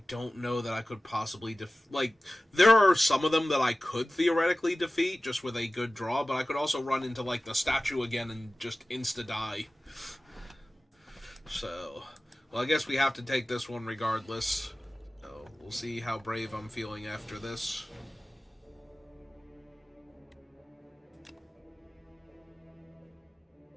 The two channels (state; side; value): normal; both; correlation 0.97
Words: don't know that I could possibly there are some of them that I could theoretically defeat just with a good draw, but I could also run into, like, the statue again and just insta-die. So, well, I guess we have to take this one regardless. So, we'll see how brave I'm feeling after this.